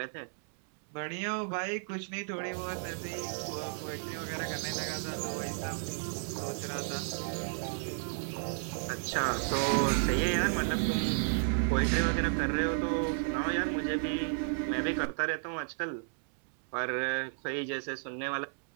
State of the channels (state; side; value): silent; left; 56 dB below the other